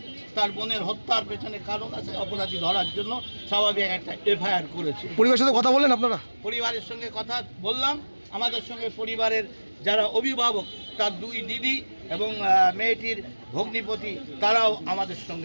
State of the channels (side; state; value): both; inverted; correlation -1.00